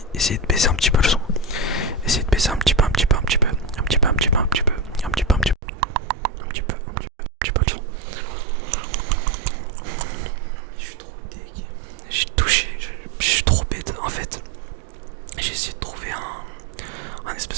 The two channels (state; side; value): drops out; left; at 5.6 s